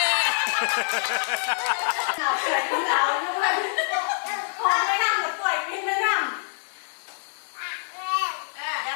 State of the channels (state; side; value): silent; right; digital silence